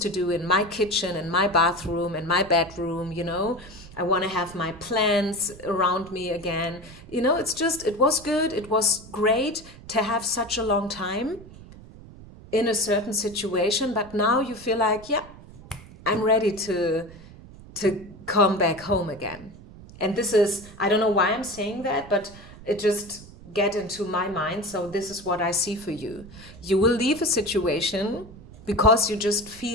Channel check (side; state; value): right; noise; rumble, 18 dB below the sound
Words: to do in my kitchen, in my bathroom, in my bedroom, you know. I want to have my plants around me again. You know, it's just, it was good. It was great to have such a long time in a certain situation. But now you feel like, yeah, I'm ready to come back home again. And this is, I don't know why I'm saying that, but it just get into my mind. So this is what I see for you. You will leave a situation because you just